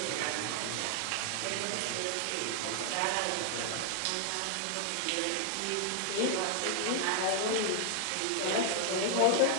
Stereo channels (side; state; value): both; different; correlation 0.00